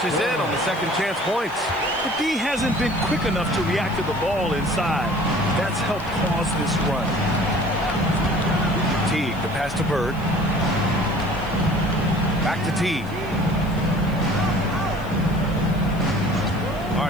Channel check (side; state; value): left; noise; hiss, 24 dB below the sound